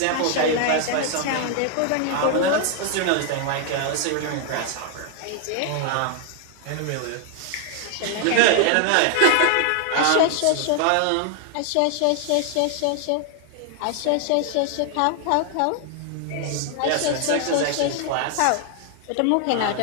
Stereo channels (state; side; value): different; both; correlation 0.00